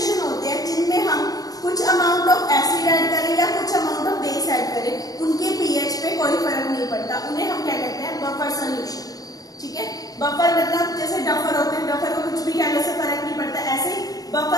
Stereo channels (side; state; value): right; late; 0.18 ms